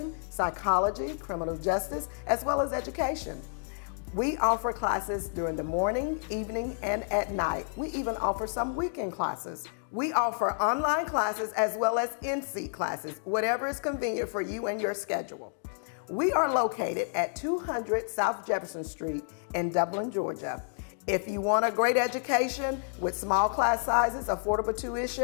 psychology, criminal justice, as well as education. We offer classes during the morning, evening, and at night. We even offer some weekend classes. We offer online classes as well as in-seat classes, whatever is convenient for you and your schedule. We are located at 200 South Jefferson Street in Dublin, Georgia. If you want a great education with small class sizes, affordable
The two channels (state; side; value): silent; right; digital silence